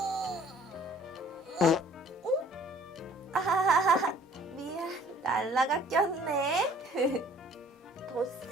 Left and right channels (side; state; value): both; normal; correlation 0.55